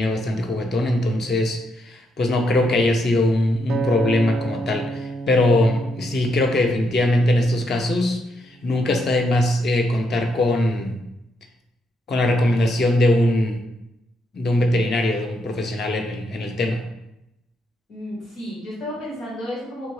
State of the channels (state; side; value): normal; both; correlation 0.79